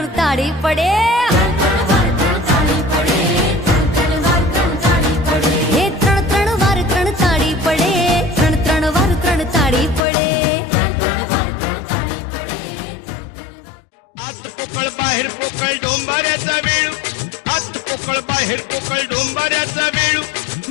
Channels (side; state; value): right; drops out; at 10.0 s